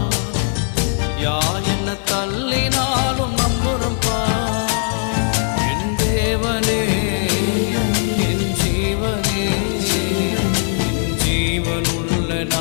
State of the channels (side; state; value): right; silent; 62 dB below the other